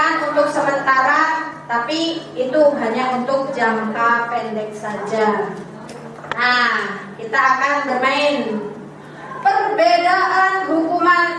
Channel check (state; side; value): identical; both; correlation 1.00